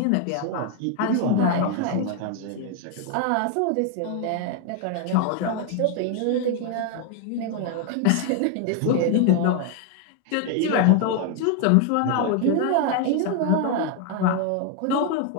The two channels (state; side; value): different; both; correlation 0.01